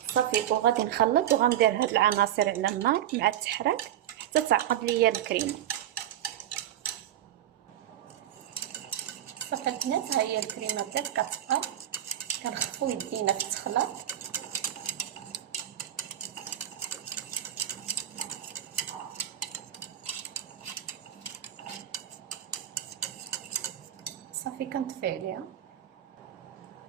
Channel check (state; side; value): quieter; left; 11.5 dB